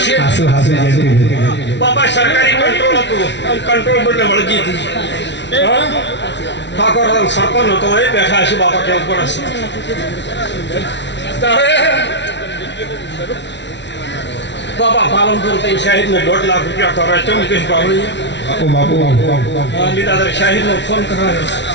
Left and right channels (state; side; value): late; right; 0.51 ms